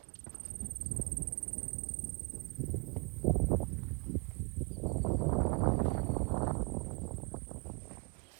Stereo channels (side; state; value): left; quieter; 33.1 dB